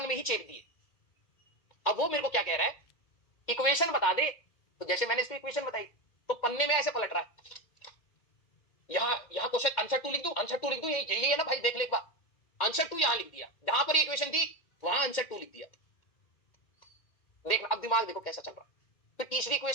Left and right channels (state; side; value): late; right; 2.1 ms